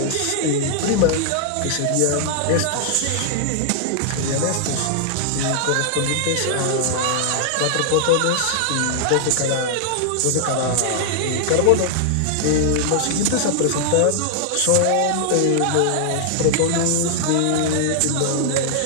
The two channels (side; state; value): both; different; correlation -0.01